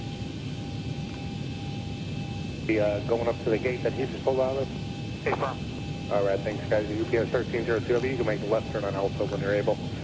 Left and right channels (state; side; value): identical; both; correlation 1.00